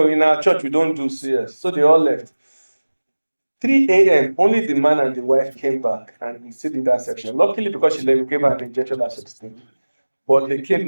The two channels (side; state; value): both; inverted; correlation -1.00